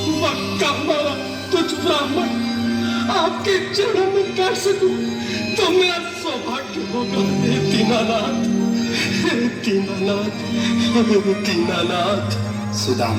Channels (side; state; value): both; identical; correlation 1.00